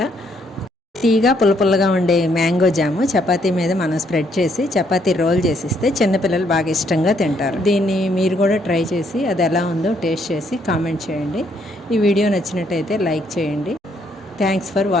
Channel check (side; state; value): both; normal; correlation 0.71